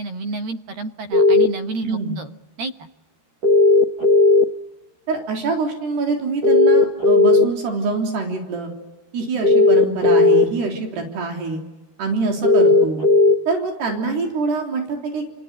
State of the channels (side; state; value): left; late; 13 ms